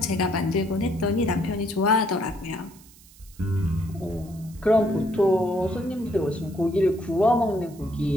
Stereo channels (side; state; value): right; noise; hiss, 24 dB below the sound